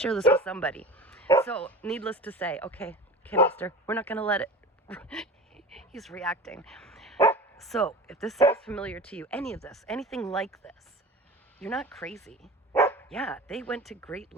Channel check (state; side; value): normal; both; correlation 0.35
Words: this with somebody. So, needless to say, okay, mister, we're not going to let it. He's reacting. So, if this sounds familiar to you, any of this, anything like this, you're not crazy. Yeah, they went to great